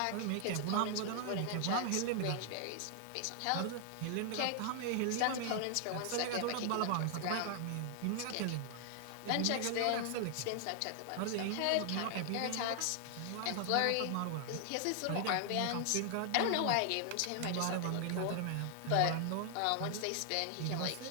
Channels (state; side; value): different; both; correlation 0.00